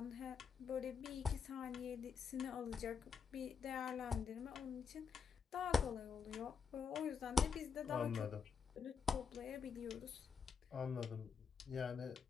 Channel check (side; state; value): right; quieter; 6.3 dB